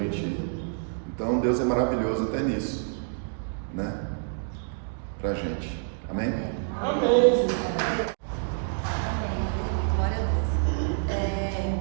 Então Deus é maravilhoso até nisso, né? Pra gente, amém? Amém. Glória a Deus.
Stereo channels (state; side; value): silent; left; digital silence